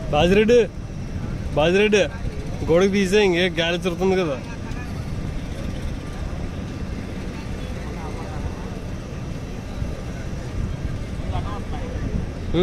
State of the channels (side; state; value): both; identical; correlation 1.00